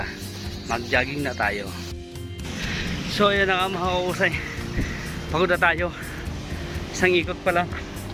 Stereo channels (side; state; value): both; identical; correlation 1.00